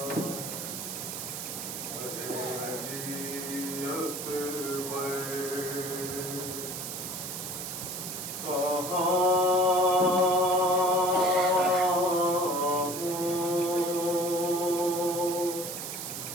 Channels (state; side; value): noise; right; hiss, 6 dB below the sound